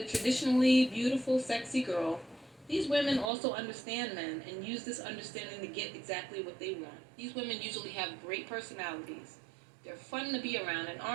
traditionally beautiful, sexy girl, these women also understand men and use this understanding to get exactly what they want. These women usually have great personalities. They're fun to be around and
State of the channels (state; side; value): drops out; left; at 3.3 s